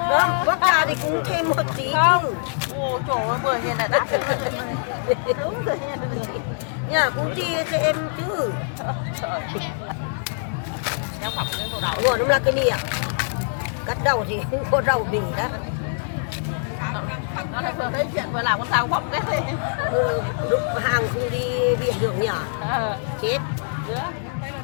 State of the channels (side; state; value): right; silent; 63 dB below the other